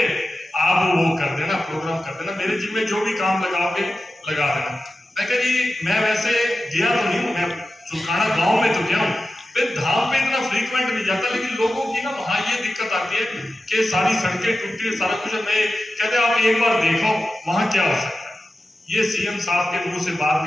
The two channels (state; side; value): normal; both; correlation 0.93